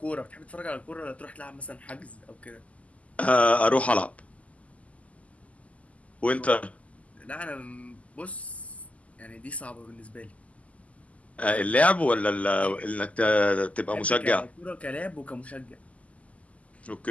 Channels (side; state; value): right; late; 0.069 ms